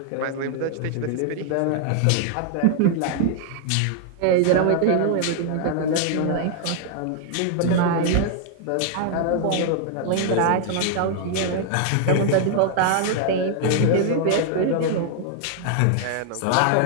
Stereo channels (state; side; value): different; both; correlation 0.00